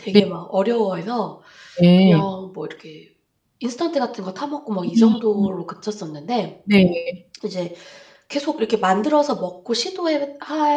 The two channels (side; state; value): both; identical; correlation 1.00